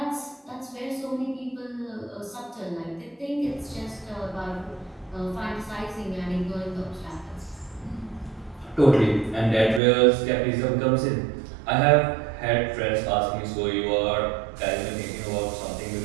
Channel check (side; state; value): left; drops out; at 9.8 s